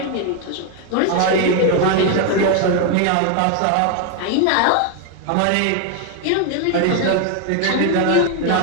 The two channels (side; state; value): both; different; correlation 0.01